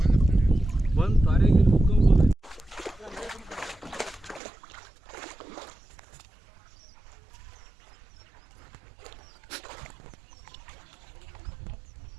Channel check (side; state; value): left; drops out; at 4.4 s